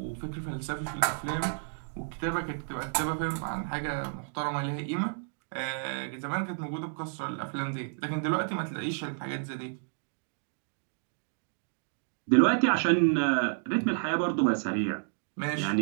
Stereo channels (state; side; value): silent; left; digital silence